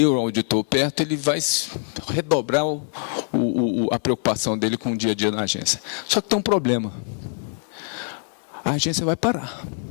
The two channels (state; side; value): silent; right; 56 dB below the other